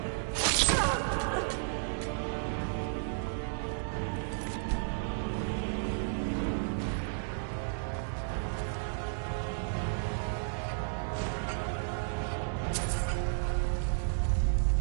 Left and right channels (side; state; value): left; silent; digital silence